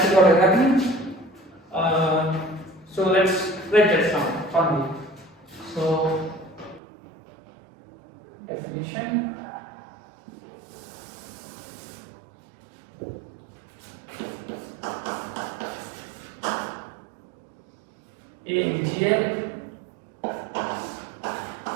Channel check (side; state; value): left; drops out; at 6.8 s